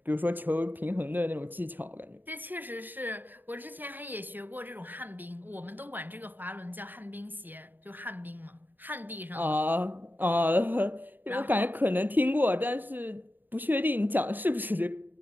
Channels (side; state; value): left; late; 0.090 ms